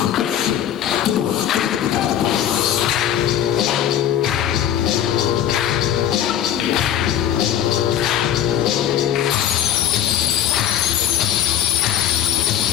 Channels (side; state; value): right; quieter; 10.5 dB